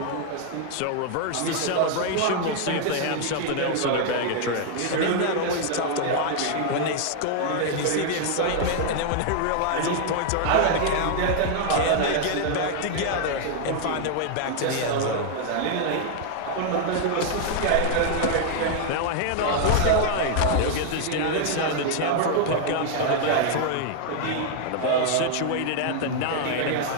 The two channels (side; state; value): both; different; correlation 0.00